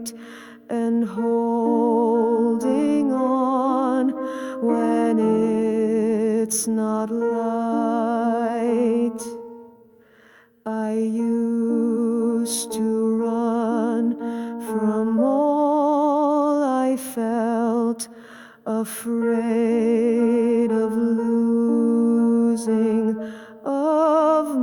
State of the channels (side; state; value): both; identical; correlation 1.00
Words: and holding on when it's not light. I used to run from all I felt, afraid of losing of